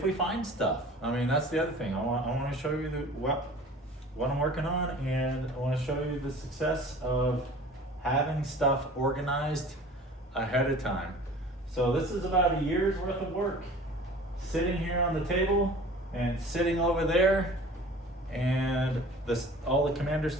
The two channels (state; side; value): normal; both; correlation 0.44